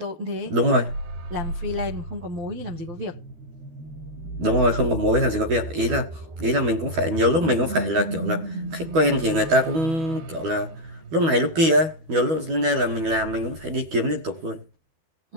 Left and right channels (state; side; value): late; left; 12 ms